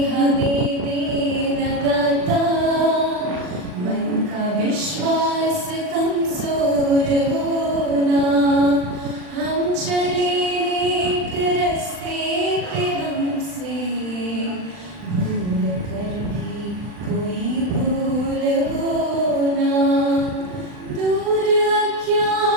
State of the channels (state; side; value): late; left; 39 ms